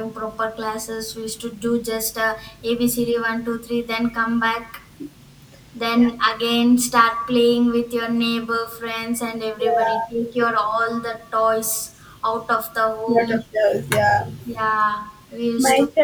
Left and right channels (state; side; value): identical; both; correlation 1.00